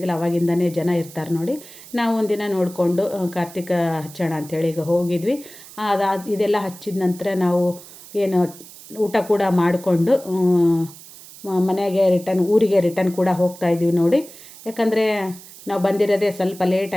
ಅವಾಗಿಂದನೇ ಜನ ಇರ್ತಾರೆ ನೋಡಿ. ನಾವು ಒಂದಿನ ನೋಡಿಕೊಂಡು ಕಾರ್ತಿಕ ಹಚ್ಚೋಣ ಅಂಥೇಳಿ ಈಗ ಹೋಗಿದ್ವಿ. ಇದೆಲ್ಲ ಹಚ್ಚಿದ ನಂತರ ನಾವು ಏನು ಊಟ ಕೂಡ ಮಾಡಿಕೊಂಡು ಮನೆಗೆ ಊರಿಗೆ ರಿಟರ್ನ್ ಕೂಡ ಹೋಗ್ತಾಯಿದ್ವಿ ನೋಡಿ. ಯಾಕಂದರೆ ನಾವು ಬಂದಿರೋದೇ ಸ್ವಲ್ಪ ಲೇಟ್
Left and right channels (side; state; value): right; noise; hiss, 18 dB below the sound